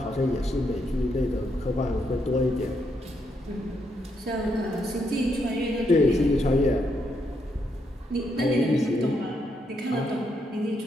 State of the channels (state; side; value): normal; both; correlation 0.78